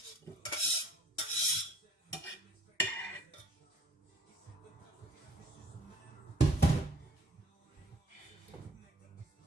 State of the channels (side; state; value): both; normal; correlation 0.56